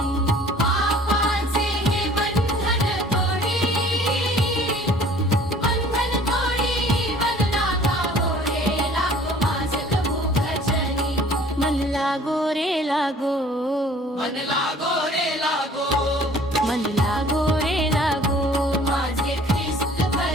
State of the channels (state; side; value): normal; both; correlation 0.52